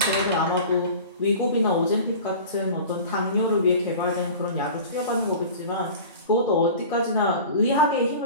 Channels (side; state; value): both; inverted; correlation -0.38